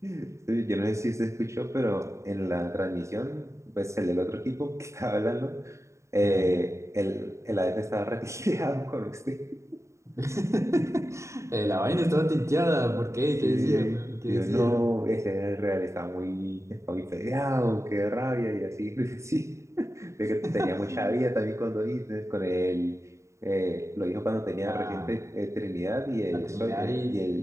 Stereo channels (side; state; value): left; late; 0.14 ms